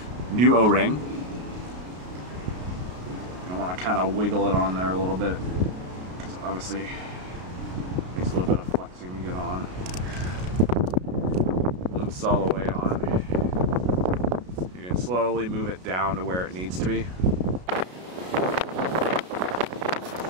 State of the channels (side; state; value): left; late; 33 ms